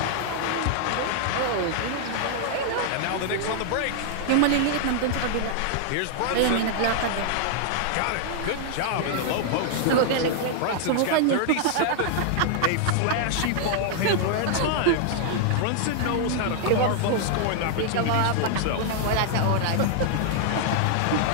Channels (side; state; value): both; different; correlation 0.00